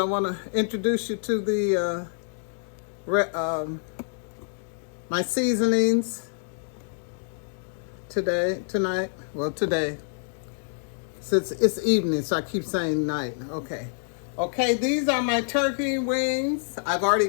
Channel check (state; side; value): silent; right; digital silence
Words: want to introduce you to the my seasonings today. Since it's evening, so I keep saying night. Okay, these are my turkey wings. I've already